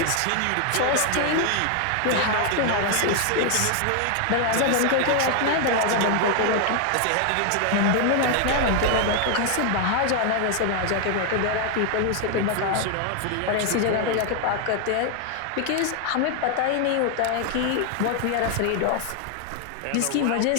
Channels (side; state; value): both; different; correlation 0.00